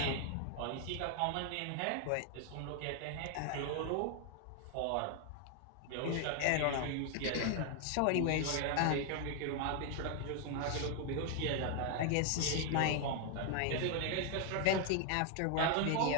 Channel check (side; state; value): both; different; correlation 0.00